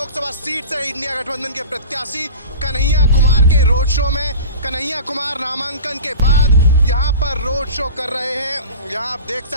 सीट से इंडिया गठबंधन के प्रत्याशी कन्हैया कुमार के रोड शो में। कन्हैया कुमार नामांकन के बाद यहाँ पर रोड शो कर रहे हैं। यहाँ आप देख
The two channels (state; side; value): inverted; both; correlation -0.36